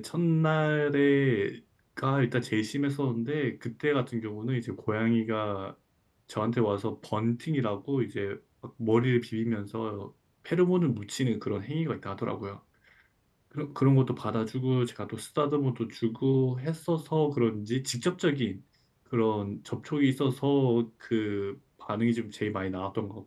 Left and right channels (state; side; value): identical; both; correlation 1.00